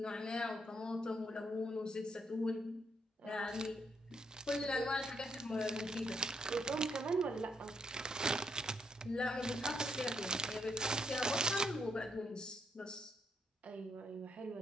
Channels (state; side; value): normal; both; correlation 0.76